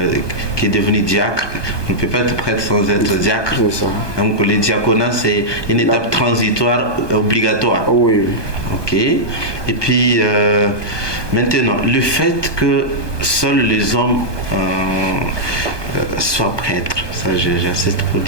qui est devenu diacre. On ne peut pas être prêtre sans être diacre. C'est ça. Donc le diaconat, c'est une étape transitoire obligatoire. Oui. Ok. Et puis maintenant, le fait que seuls les hommes soient prêtres, ça j'insiste pour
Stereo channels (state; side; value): late; right; 1.2 ms